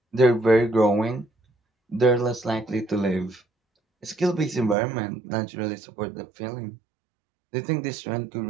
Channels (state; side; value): drops out; left; at 4.8 s